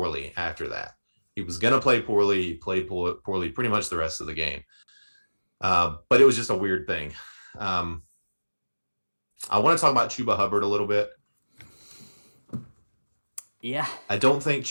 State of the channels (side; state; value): both; inverted; correlation -1.00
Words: after that. He was going to play poorly. He played poorly pretty much the rest of the game. But it was just a weird thing. I want to talk about Chuba Hubbard a little bit. Yeah. I don't think